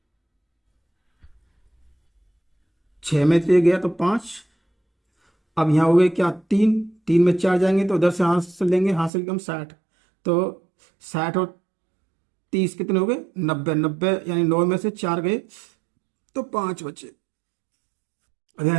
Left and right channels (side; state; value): left; drops out; at 9.1 s